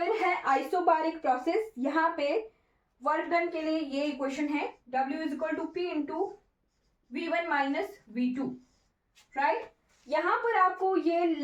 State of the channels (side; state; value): both; identical; correlation 1.00